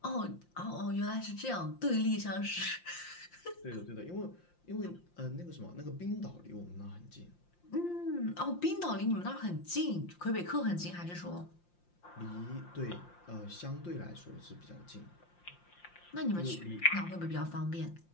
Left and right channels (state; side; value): late; right; 5.7 ms